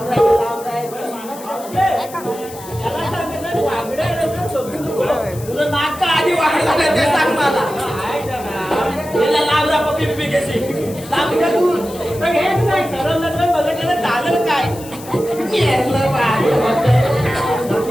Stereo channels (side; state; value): left; noise; hiss, 17 dB below the sound